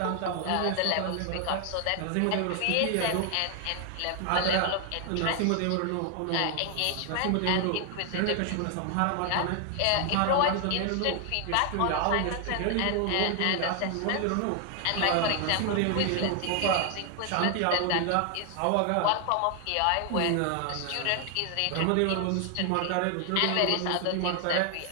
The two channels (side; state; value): both; different; correlation 0.00